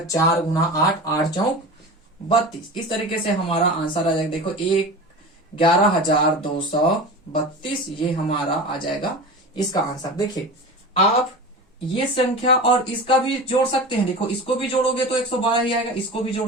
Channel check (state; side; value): normal; both; correlation 0.31